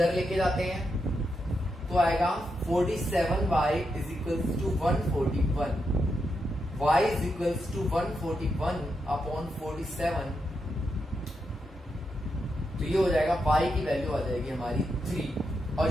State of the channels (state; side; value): normal; both; correlation 0.84